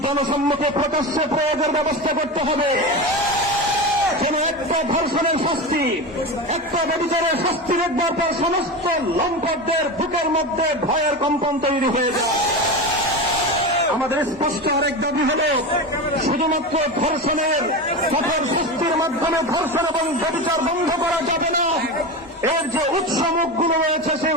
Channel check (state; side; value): normal; both; correlation 0.23